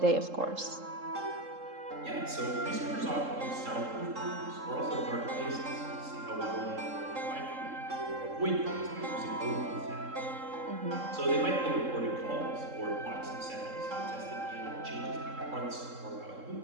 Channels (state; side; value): late; left; 3.7 ms